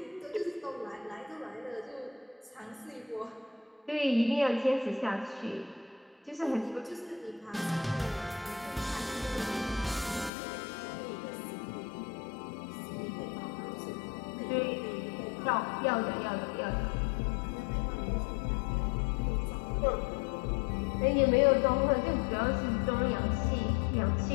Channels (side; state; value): right; drops out; at 10.3 s